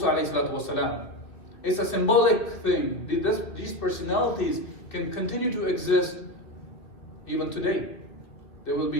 alayhi salatu wasalam. It's a symbolic thing. These personalities can continue to exist even today. They will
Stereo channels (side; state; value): right; late; 2.6 ms